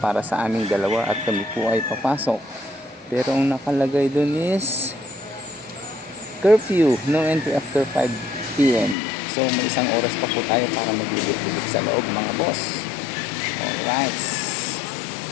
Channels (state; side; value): drops out; right; at 9.0 s